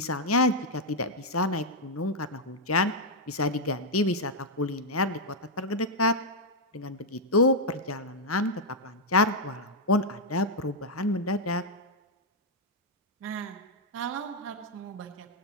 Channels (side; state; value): both; normal; correlation -0.02